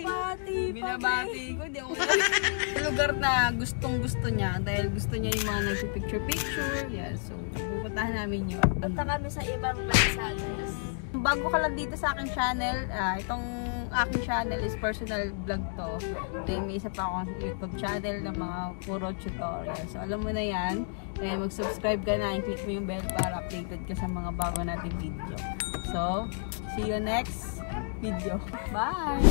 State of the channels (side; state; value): right; silent; digital silence